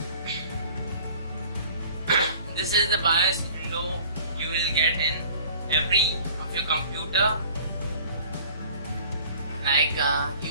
This is the BIOS window you will get in every of your computer. Like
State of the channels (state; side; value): inverted; both; correlation -0.47